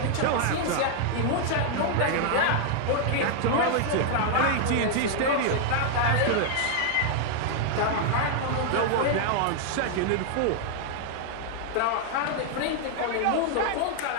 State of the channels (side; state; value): both; different; correlation 0.00